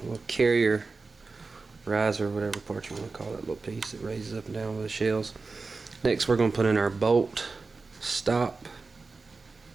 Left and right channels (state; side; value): quieter; left; 4.0 dB